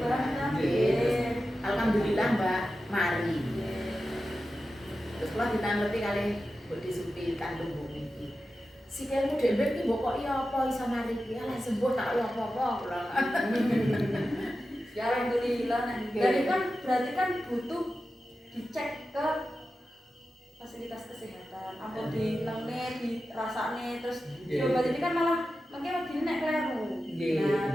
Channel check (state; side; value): normal; both; correlation 0.92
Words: kan? nggih. Alhamdulillah, Mbak, mari. Terus kula ditanglepi kalih mbok disupi kandung bumi iki. Sikilmu dhewe iki mbok kok iya apa iso mari iki? Lah sembuh tak iya apa-apa kula. Ya alhamdulillah. Dan itu kan berarti kan butuh dicek ke fasilitas kesehatan. Apa di lengne, di rasane, terus diobat ini kan malah mungkin lebih nek kleru.